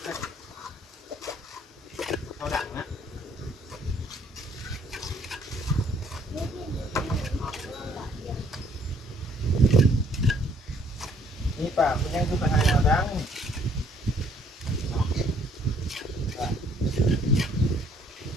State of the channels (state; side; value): normal; both; correlation 0.63